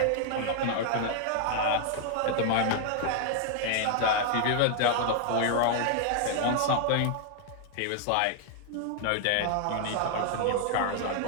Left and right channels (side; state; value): both; different; correlation 0.00